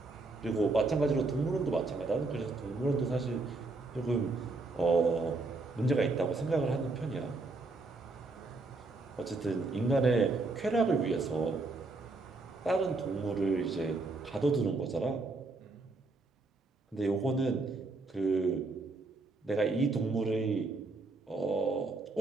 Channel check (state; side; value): quieter; left; 3.4 dB